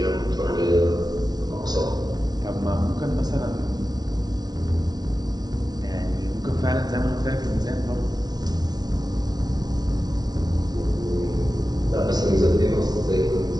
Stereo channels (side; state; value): left; late; 0.19 ms